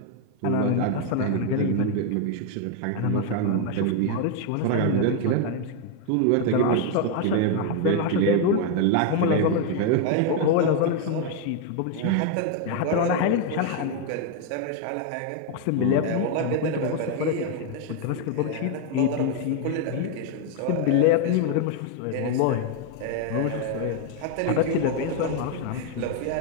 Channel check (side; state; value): both; different; correlation 0.01